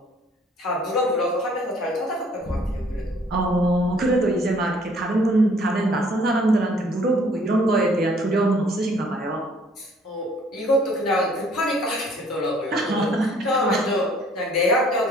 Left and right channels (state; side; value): normal; both; correlation 0.59